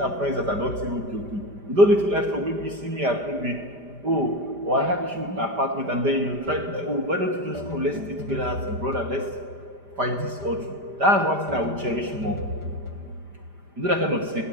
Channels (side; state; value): left; late; 5.0 ms